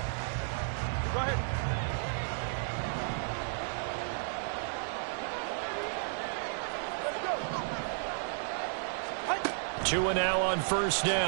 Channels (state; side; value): silent; left; 56 dB below the other